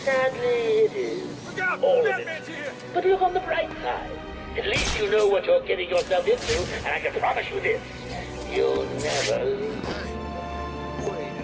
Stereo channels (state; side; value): identical; both; correlation 1.00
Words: it is. Look out! All of Batman's it. here! But look on the bright side. At least you know what you're getting yourself into, and I can promise you this. You'll never lose. Wait